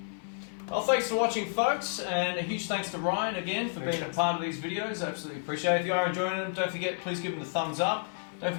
Well, thanks for watching, folks, and a huge thanks to Ryan again for being a part of these videos. Absolutely appreciate it. If you are enjoying them, don't forget, please give them the thumbs up. Don't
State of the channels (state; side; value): silent; right; 55 dB below the other